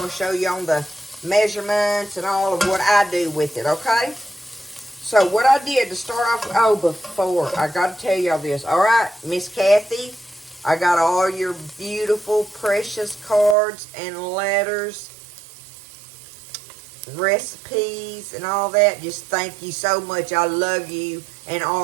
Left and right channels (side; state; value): left; drops out; at 13.6 s